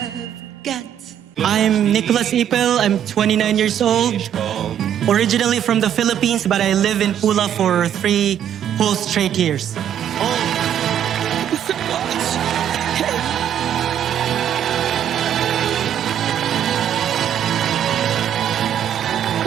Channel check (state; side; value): quieter; left; 9.8 dB